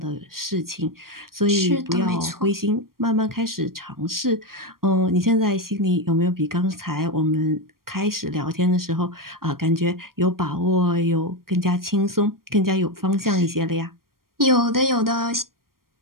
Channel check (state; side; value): late; left; 0.92 ms